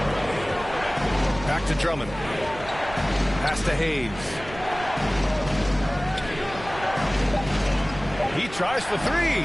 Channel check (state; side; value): noise; right; rumble, 14 dB below the sound